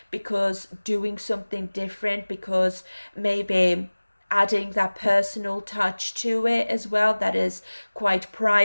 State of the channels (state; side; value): inverted; both; correlation -1.00